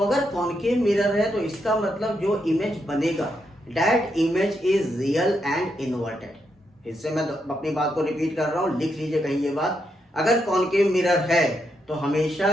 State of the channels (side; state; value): both; normal; correlation 0.81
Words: अगर कॉनकेव मिरर है तो इसका मतलब जो इमेज बनेगा that image is real and inverted. इससे मैं अपनी बात को रिपीट कर रहा हूं, लिख लीजिए कहीं ये बात। अगर कॉनकेव मिरर है तो हमेशा